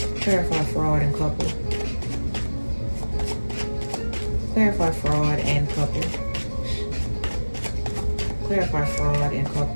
Clarify fraud and couple. Clarify fraud and couple. Clarify fraud and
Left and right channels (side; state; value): both; inverted; correlation -1.00